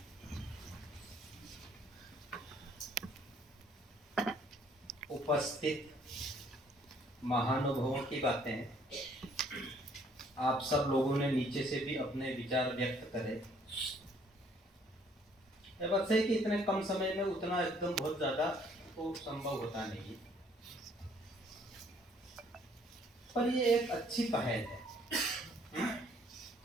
उपस्थित महानुभावों की बातें आप सब लोगों ने नीचे से भी अपने विचार व्यक्त करे। ये बात सही कि इतने कम समय में उतना एकदम बहुत ज्यादा तो संभव होता नहीं, पर ये एक अच्छी पहल है।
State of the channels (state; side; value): normal; both; correlation 0.62